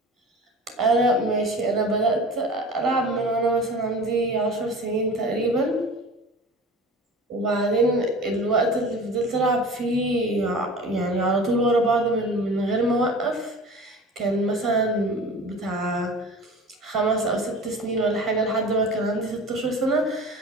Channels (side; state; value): both; normal; correlation 0.38